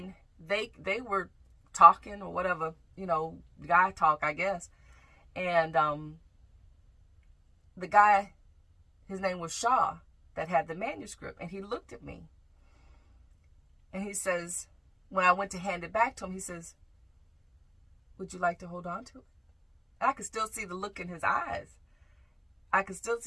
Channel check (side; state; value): both; identical; correlation 1.00